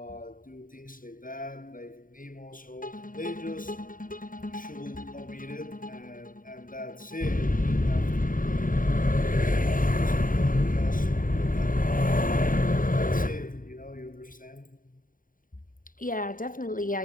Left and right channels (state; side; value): late; right; 0.40 ms